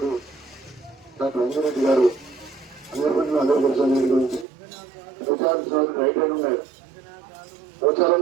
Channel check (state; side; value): drops out; left; at 4.5 s